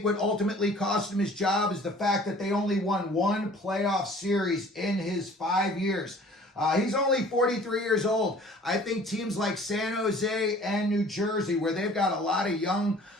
what ultimately cost him his job is the fact that they only won one playoff series in his 5 years. He's only 43 years old. I think teams like San Jose and New Jersey, where they've got a lot of young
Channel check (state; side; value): normal; both; correlation 0.50